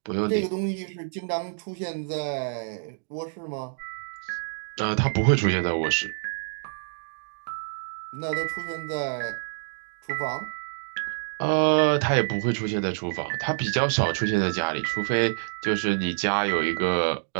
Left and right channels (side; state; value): left; silent; digital silence